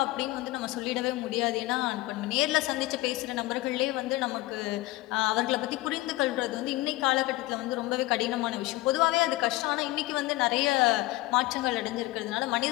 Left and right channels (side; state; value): right; quieter; 18.9 dB